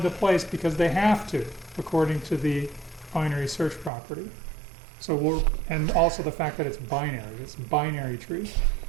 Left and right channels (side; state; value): left; drops out; at 3.9 s